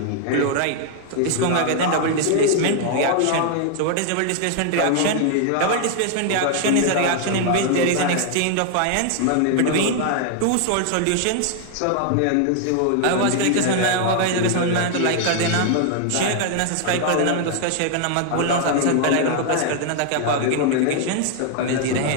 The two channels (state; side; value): different; both; correlation 0.00